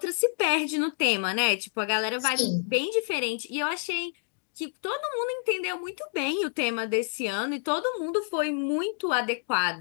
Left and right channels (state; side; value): silent; right; 59 dB below the other